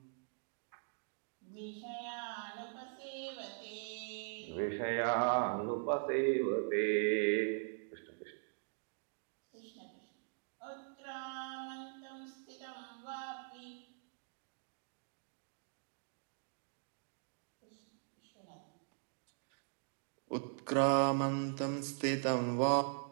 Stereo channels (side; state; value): left; silent; digital silence